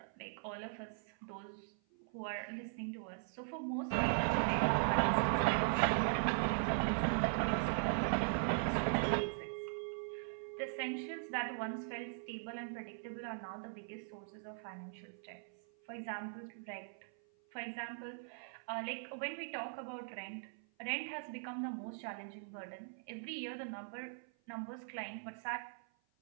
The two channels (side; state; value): left; silent; 51 dB below the other